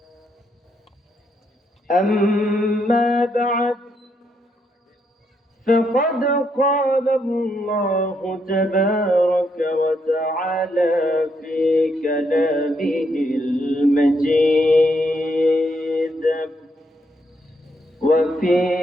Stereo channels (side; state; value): both; normal; correlation 0.77